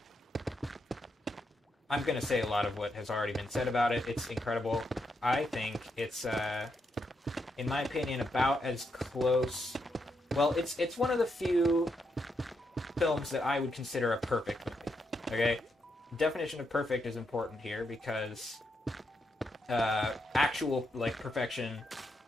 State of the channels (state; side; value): normal; both; correlation 0.81